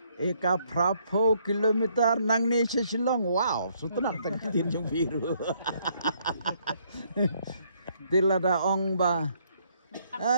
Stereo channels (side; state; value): both; inverted; correlation -0.69